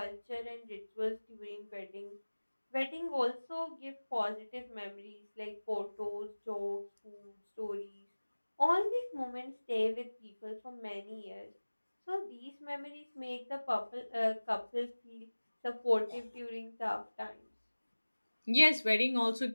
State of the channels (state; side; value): inverted; both; correlation -1.00